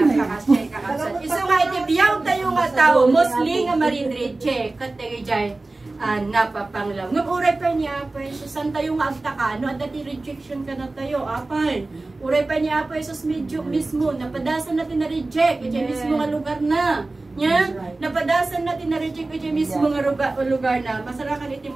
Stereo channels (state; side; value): quieter; left; 3.1 dB